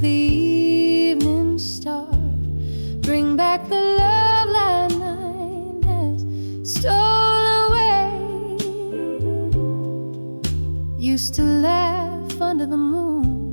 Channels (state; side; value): inverted; both; correlation -1.00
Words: evening star. Bring back the love that night has stolen away. Used to laugh under the